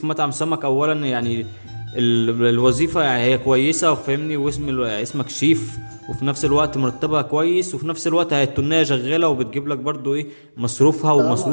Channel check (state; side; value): inverted; both; correlation -1.00